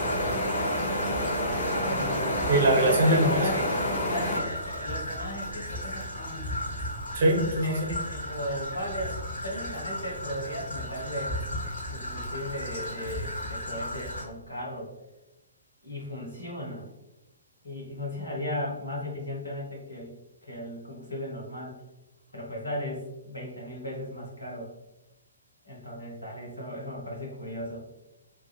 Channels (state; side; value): inverted; both; correlation -0.46